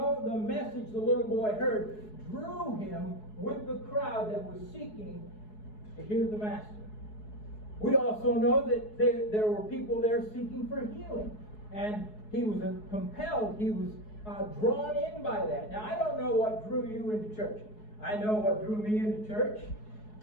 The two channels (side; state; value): right; late; 4.7 ms